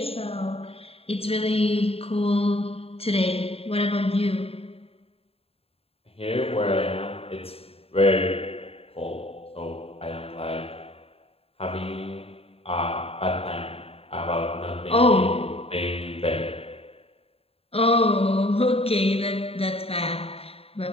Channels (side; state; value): right; late; 0.28 ms